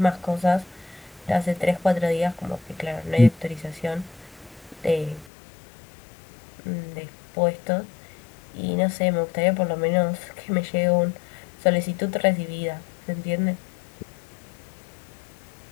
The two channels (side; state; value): right; drops out; at 5.2 s